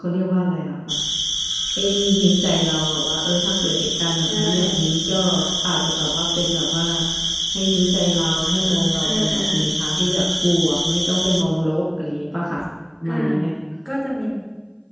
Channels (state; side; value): identical; both; correlation 1.00